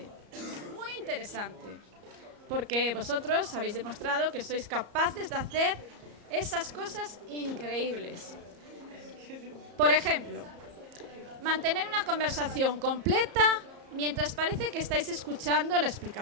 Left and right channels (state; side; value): late; left; 34 ms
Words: muy interesante, porque vosotros habéis demostrado que sois capaces de hacer esas cosas increíbles. Por ejemplo, mantener una conversación completa mientras parece que estáis escuchando la